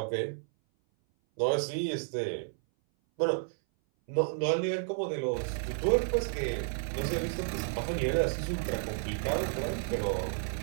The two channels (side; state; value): left; silent; 57 dB below the other